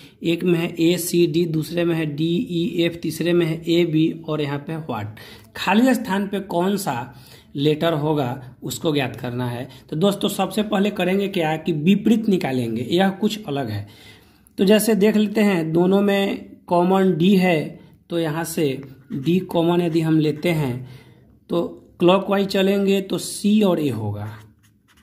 एक में है ए सी डी, दूसरे में है डी ई एफ, तीसरे में है ए बी और यहाँ पे व्हाट। खाली स्थान पे कौन सा लेटर होगा उसको ज्ञात करना है। तो दोस्तों सबसे पहले करेंगे क्या कि विपरीत निकालेंगे, यह कुछ अलग है। तो जैसे देख लेते हैं दोनों में कॉमन डी है, तो यहाँ से डी कॉमन यदि हम लेते हैं तो क्लॉकवाइज चलेंगे तो सी और ए होगा,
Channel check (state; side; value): identical; both; correlation 1.00